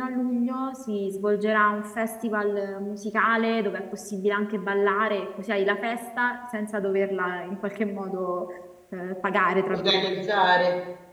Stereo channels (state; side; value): identical; both; correlation 1.00